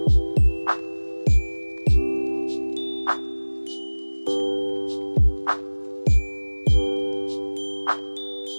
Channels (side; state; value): both; inverted; correlation -1.00